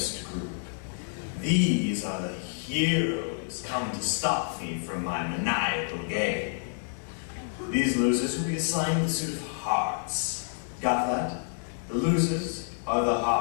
group. These are the heroes come to stop me from my maniacal game. These losers will be assigned the suit of hearts. Got that? The losers are the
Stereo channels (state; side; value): silent; right; digital silence